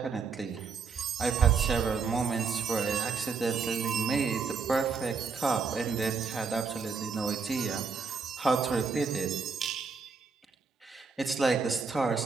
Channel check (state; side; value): quieter; left; 5.1 dB